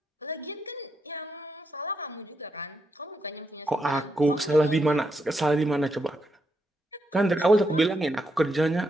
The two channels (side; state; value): both; normal; correlation 0.81